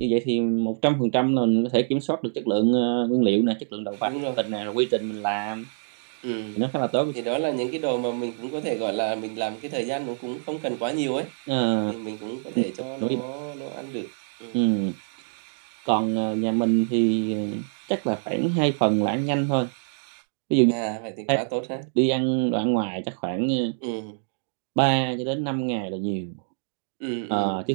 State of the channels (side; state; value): left; silent; digital silence